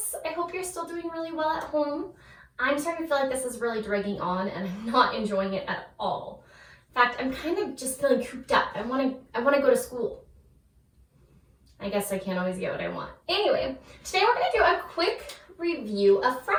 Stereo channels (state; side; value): identical; both; correlation 1.00